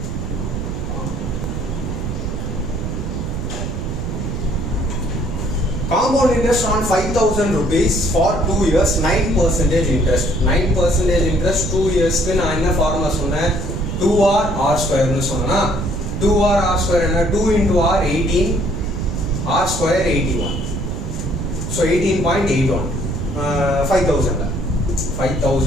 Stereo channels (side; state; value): right; noise; rumble, 4 dB below the sound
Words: Compound interest on 5,000 rupees for 2 years, 9% interest. 9% interest 2 years க்கு நான் என்ன ஃபார்முலா சொன்னேன், 2r r square னு சொன்னா 2r r square என்ன, 2 into r 18, r square 81. So 18.81.